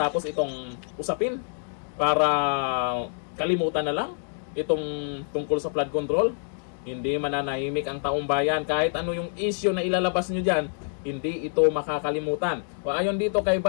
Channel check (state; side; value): silent; right; digital silence